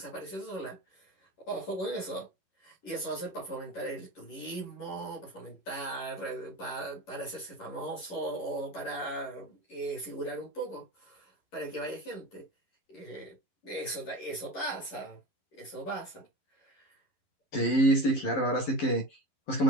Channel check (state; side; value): late; right; 11 ms